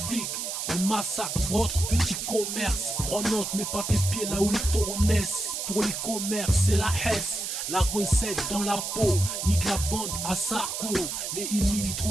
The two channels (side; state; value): right; noise; hiss, 4 dB below the sound